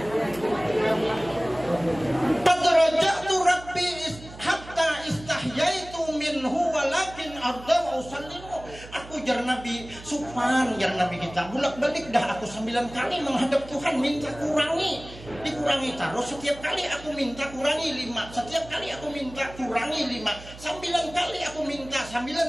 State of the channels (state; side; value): noise; right; hum, 17 dB below the sound